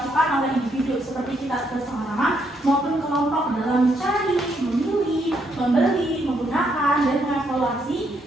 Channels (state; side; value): normal; both; correlation 0.75